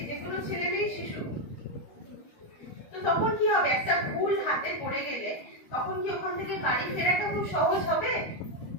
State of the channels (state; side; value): late; right; 12 ms